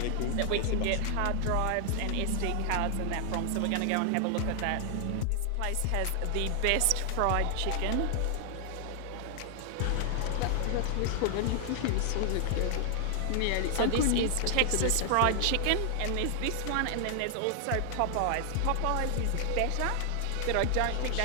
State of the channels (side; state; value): both; different; correlation 0.00